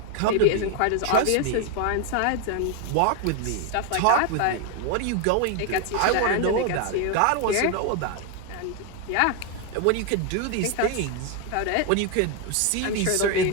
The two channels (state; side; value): different; both; correlation 0.01